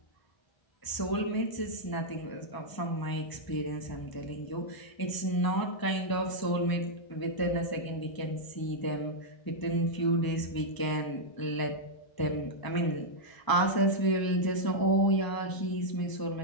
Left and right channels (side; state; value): right; late; 1.0 ms